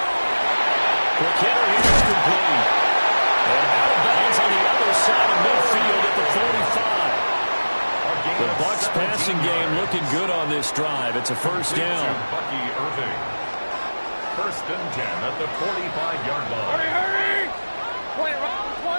McKinnon is complete. And out of bounds on the other side of midfield at the 45. The Bucs passing game looking good on this drive. It's a first down. First and 10 at the 45-yard line. Hurry, hurry. 20,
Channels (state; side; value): inverted; both; correlation -1.00